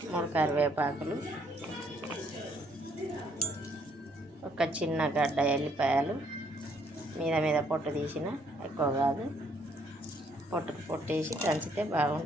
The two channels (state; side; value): normal; both; correlation 0.67